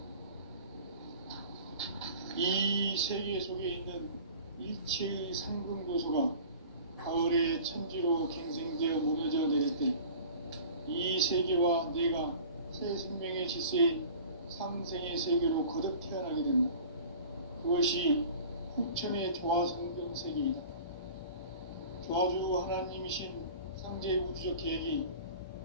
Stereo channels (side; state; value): both; inverted; correlation -0.42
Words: 이 세계 속에 있는 일체의 상승교수가 가을의 천지로 갱생되어 무너져 내릴 때 이 세계와 내가 새 생명의 질서인 상생의 세계로 거듭 태어나게 된다. 그것이 후천의 조화성경 세계이다. 조화주 하나님이신 상제 우주적 계획이